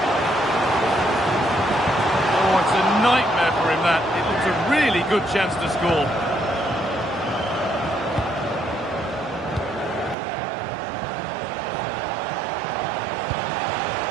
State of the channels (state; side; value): drops out; left; at 10.2 s